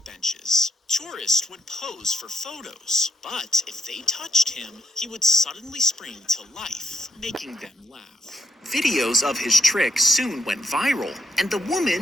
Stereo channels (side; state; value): both; normal; correlation 0.77